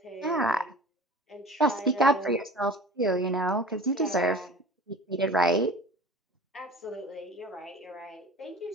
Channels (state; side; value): normal; both; correlation 0.40